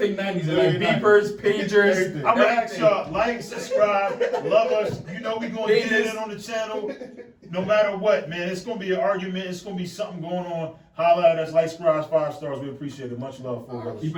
90s. They like Yeah, beepers, pagers. Everything. I'm gonna ask y'all, like, subscribe, love us. You know we gonna get it in on the channel. No matter what, man. It's gonna be an argument. It's gonna be something going on. Holla at us, like, subscribe, 5 stars. We appreciate it. Much love for us. Keep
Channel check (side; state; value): both; identical; correlation 1.00